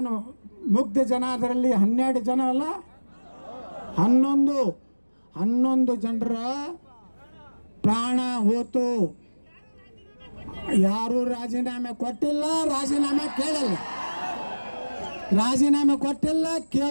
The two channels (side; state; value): both; inverted; correlation -1.00